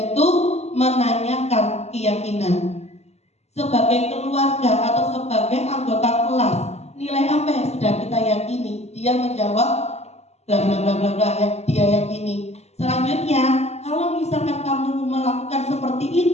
menanyakan keyakinan. Sebagai keluarga atau sebagai anggota kelas, nilai apa yang sudah kita yakini? Dia menjawab bla bla bla bla bla yang dia yakini. Selanjutnya, kalau misalkan kamu melakukan seperti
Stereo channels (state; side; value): late; right; 0.31 ms